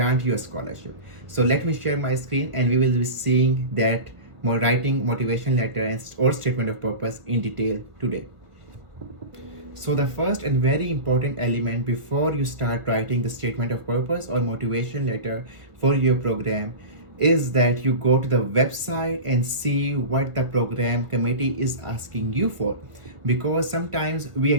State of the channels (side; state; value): left; late; 1.5 ms